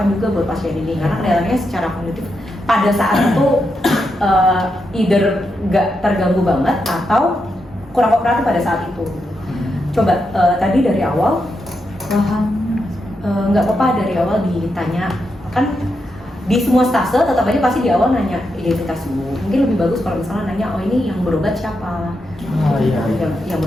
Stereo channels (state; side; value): normal; both; correlation 0.84